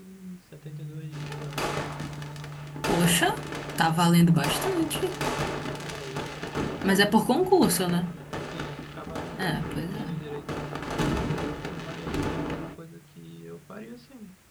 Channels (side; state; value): both; identical; correlation 1.00